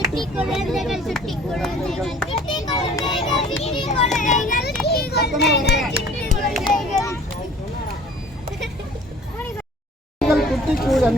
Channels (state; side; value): normal; both; correlation 0.50